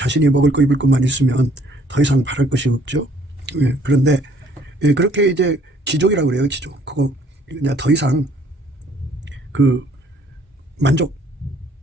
먹을 거 입을 것만 있으면 더 이상 바랄 것이 없죠. 그런데 그렇게 이제 지족이라고 그래요. 지족. 그거 그냥 더 이상 그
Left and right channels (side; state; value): both; normal; correlation 0.60